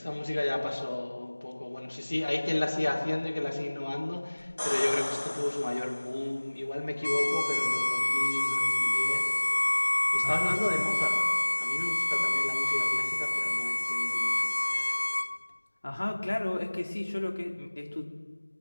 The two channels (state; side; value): inverted; both; correlation -1.00